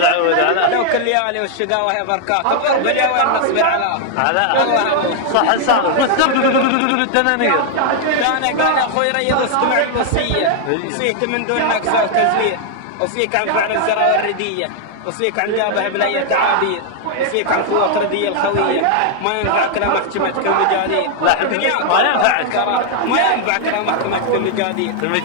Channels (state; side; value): different; both; correlation 0.00